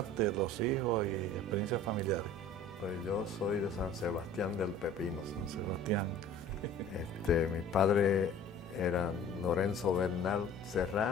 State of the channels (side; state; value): both; normal; correlation 0.47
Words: los hijos y experiencias familiares. Pues yo soy de San Sebastián del Pepino. San Sebastián. Mis padres eran Lorenzo Bernal